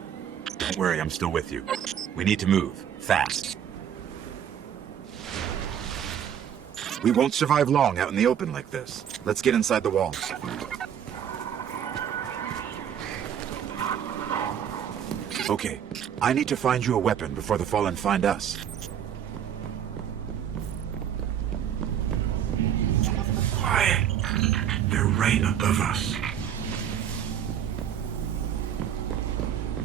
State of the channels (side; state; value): left; quieter; 9.2 dB